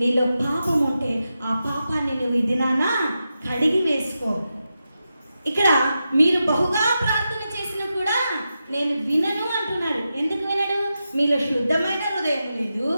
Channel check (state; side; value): inverted; both; correlation -0.89